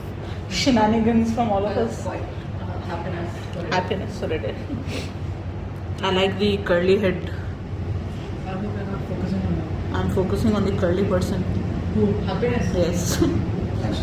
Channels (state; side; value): identical; both; correlation 1.00